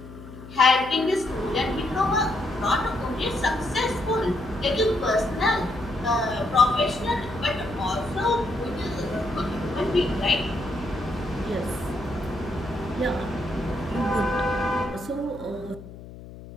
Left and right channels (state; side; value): noise; left; hum, 15 dB below the sound